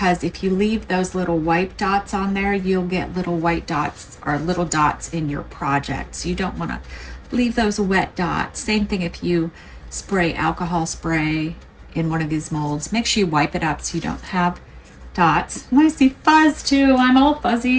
if you leave those little white dots on there, you'll get little white dots or little dots in your project. So you don't want to leave those wet dots. Same thing if you spray alcohol spray in one of these molds. Make sure you wipe it up so you don't have dots. And I see fuzz too. I'm all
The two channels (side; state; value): both; identical; correlation 1.00